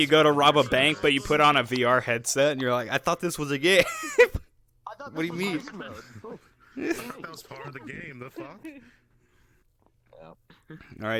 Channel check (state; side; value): identical; both; correlation 1.00